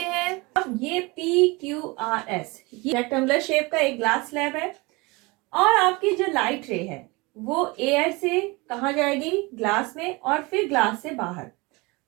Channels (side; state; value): left; quieter; 25.3 dB